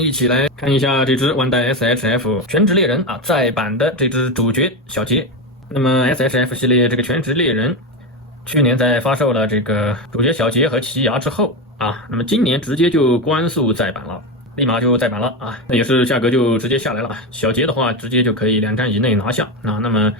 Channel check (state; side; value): normal; both; correlation 0.15